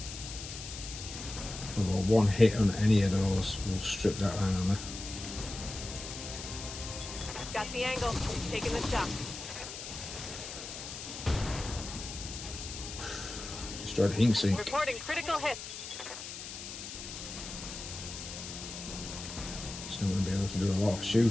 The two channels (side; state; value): left; noise; hiss, 9 dB below the sound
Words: Although one hit on any of those will strip that armour. the angle. Taking the shot. Destroyed the heat sink. Reporting critical hit. Still going to be able to do a lot of